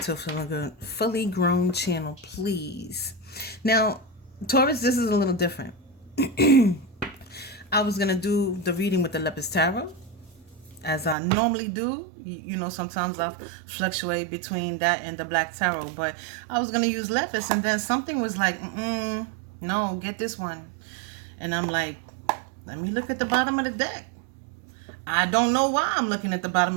a fully grown channel, please. Now, Taurus, this is a little different. I was going to do the reading with the Lepus Tarot, as I normally do. You know, sometimes I fluctuate between that and the Black Tarot, but I was going to use Lepus, and then something was like, no, get this one. And I'm like, let me look at the bottom of the deck. I don't know why I'm looking at the bottom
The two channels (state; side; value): drops out; left; at 11.2 s